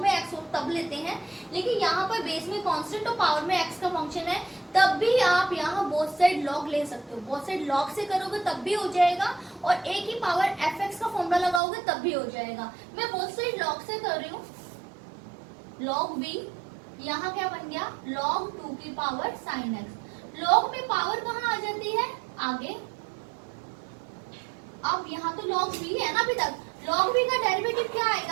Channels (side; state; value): left; drops out; at 11.6 s